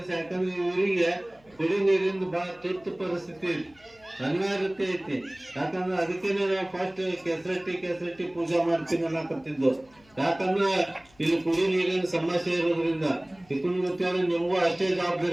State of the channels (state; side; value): noise; left; hum, 30 dB below the sound